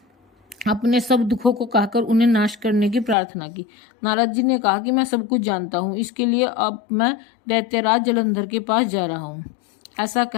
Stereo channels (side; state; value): right; drops out; at 3.2 s